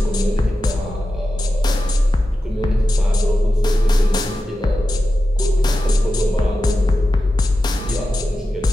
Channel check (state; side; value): normal; both; correlation 0.92